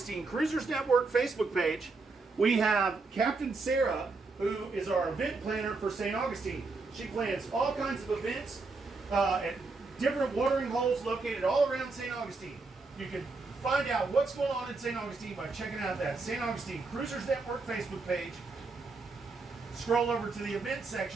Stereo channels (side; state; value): left; quieter; 3.9 dB